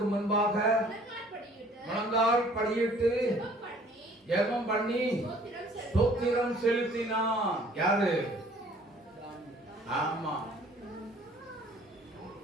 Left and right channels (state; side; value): normal; both; correlation 0.54